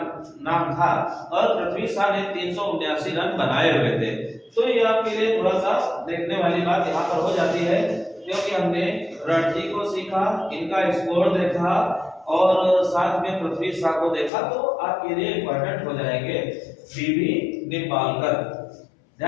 था और पृथ्वी शा ने 379 रन बनाए हुए थे। तो ये आपके लिए थोड़ा सा देखने वाली बात यहाँ पर हो जाती है क्योंकि हमने रणजी को सीखा, इनका स्कोर देखा और साथ में पृथ्वी शा को देखा, तो आपके लिए इंपॉर्टेंट हो जाएंगे बीबी निम्बालकर।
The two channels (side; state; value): right; drops out; at 14.3 s